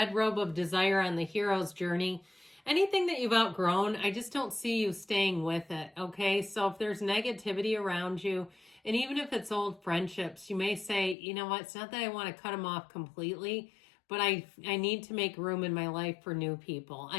robe of desire on the hero's journey. Anything that you've outgrown, I just don't see you staying with it, okay? So if there's negativity around you, and even if it's old friendships, you may say, you know what, it's not that I want to cut them off completely, but I need to make room in my life for new people.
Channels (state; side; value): drops out; right; at 11.2 s